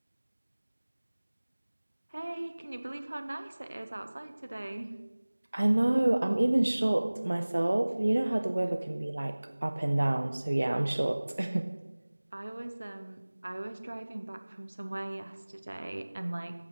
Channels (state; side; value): inverted; both; correlation -1.00